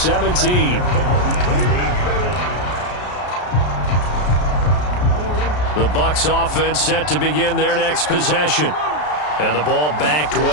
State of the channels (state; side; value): late; right; 33 ms